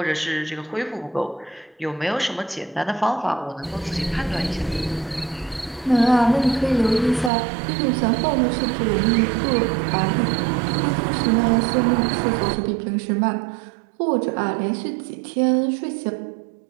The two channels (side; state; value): left; drops out; at 7.3 s